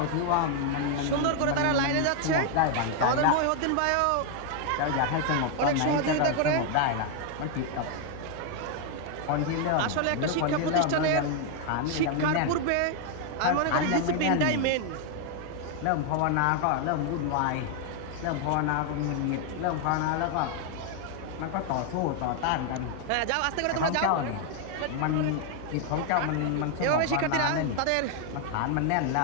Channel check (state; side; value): different; both; correlation 0.00